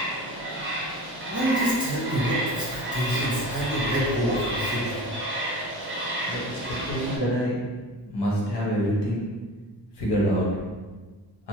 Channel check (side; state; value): both; normal; correlation 0.37